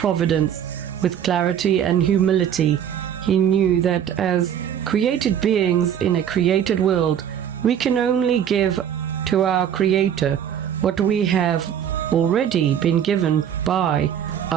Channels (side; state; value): left; quieter; 9.3 dB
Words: with clarity and humility. He knew that as created beings in a created world, we can only give to our Creator what we have already been given by